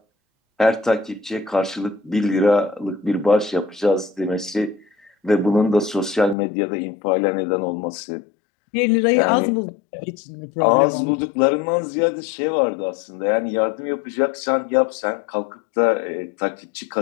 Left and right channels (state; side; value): drops out; right; at 6.4 s